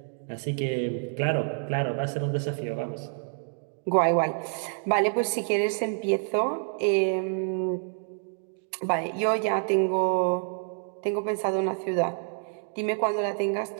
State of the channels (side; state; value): left; silent; 59 dB below the other